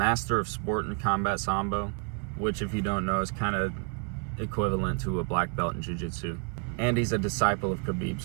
of sport and combat sambo, which if you don't know is kind of equivalent to a black belt in jiu-jitsu. And he's a disciple of Khabib,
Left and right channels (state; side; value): quieter; left; 38.0 dB